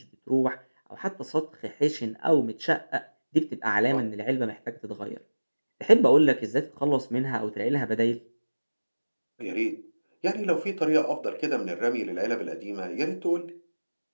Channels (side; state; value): both; inverted; correlation -1.00